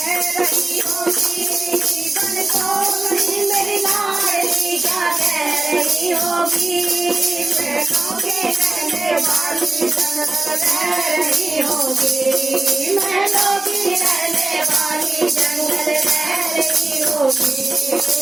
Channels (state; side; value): quieter; left; 3.1 dB